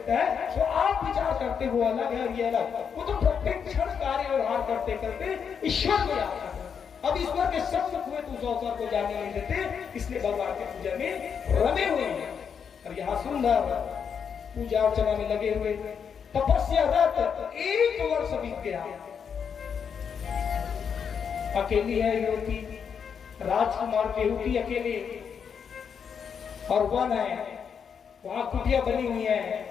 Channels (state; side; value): quieter; right; 7.0 dB